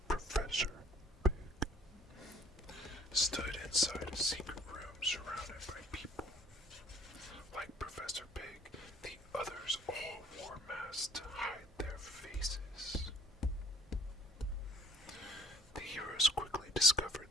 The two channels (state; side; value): normal; both; correlation 0.57